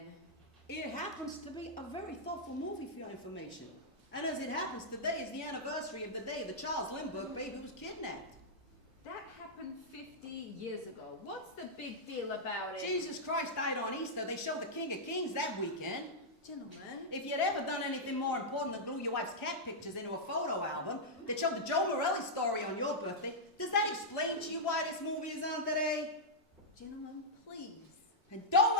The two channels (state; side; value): normal; both; correlation -0.08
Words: It happens to be a very thoughtful movie for your information. And as it happens, today is the anniversary of the day the Charles Lindbergh baby was kidnapped. That happened 50 years ago. What's the big deal about it? Jesus Christ died on Easter. They showed the King of Kings that weekend. Gentlemen. If you'd ever done anything more important than glue your wife's cat pictures into a photo album that showed the Joe Morelli story on your birthday, does that explain to you why this movie is on today? Gentlemen, please. And don't